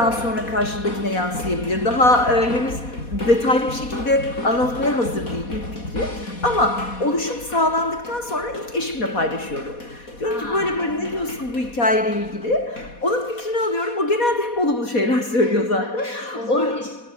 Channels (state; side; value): late; right; 4.1 ms